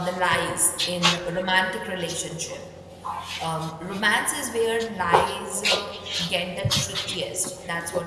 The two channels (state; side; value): identical; both; correlation 1.00